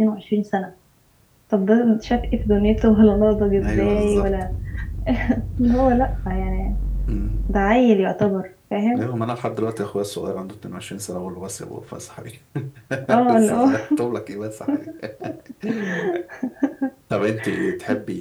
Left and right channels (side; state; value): both; identical; correlation 1.00